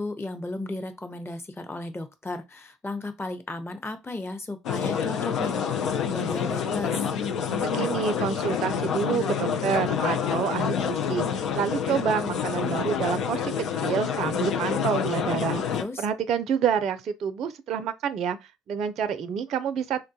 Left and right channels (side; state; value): both; normal; correlation 0.48